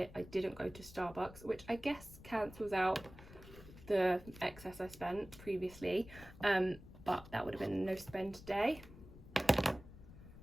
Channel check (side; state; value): left; noise; rumble, 17 dB below the sound